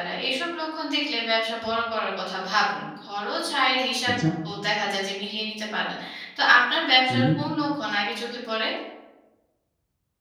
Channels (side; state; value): both; identical; correlation 1.00